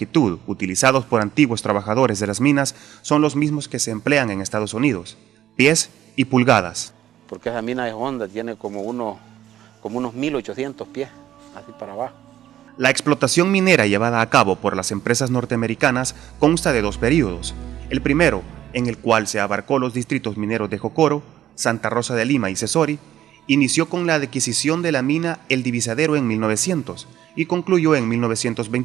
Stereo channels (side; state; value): left; quieter; 12.1 dB